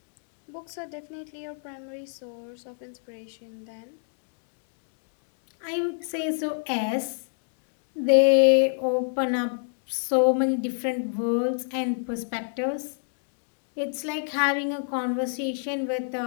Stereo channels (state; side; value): silent; right; digital silence